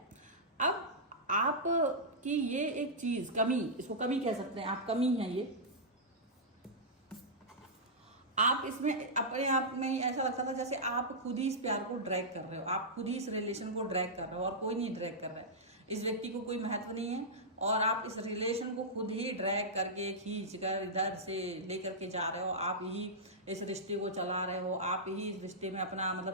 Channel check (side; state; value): both; normal; correlation -0.11